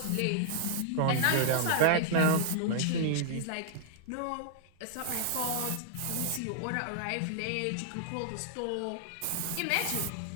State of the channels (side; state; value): both; different; correlation -0.01